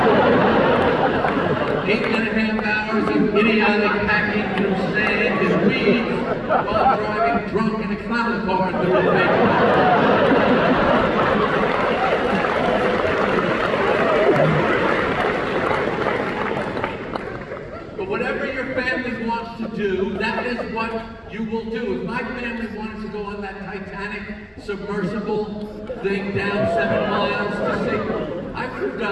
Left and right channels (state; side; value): identical; both; correlation 1.00